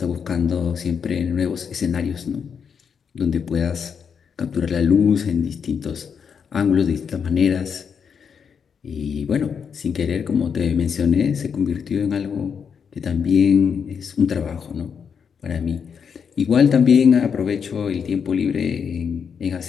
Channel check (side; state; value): right; quieter; 6.8 dB